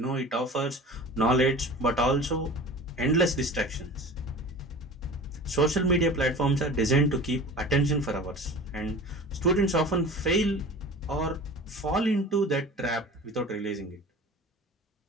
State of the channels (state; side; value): normal; both; correlation 0.37